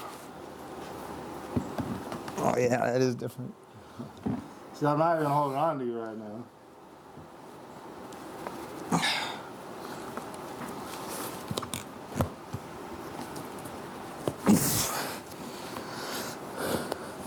Oh yeah, that is different. See, I'm not even holding on to you right now.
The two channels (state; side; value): identical; both; correlation 1.00